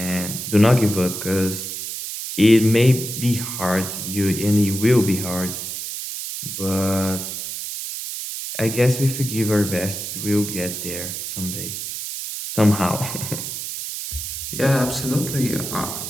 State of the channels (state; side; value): noise; right; hiss, 6 dB below the sound